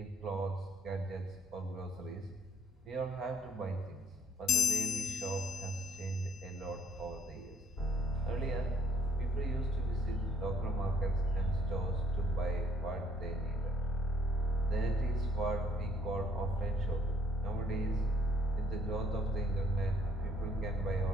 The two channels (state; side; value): normal; both; correlation 0.64